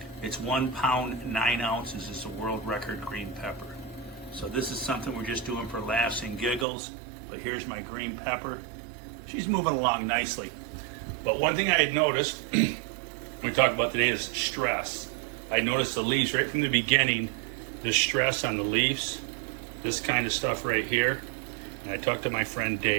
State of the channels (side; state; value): left; drops out; at 6.7 s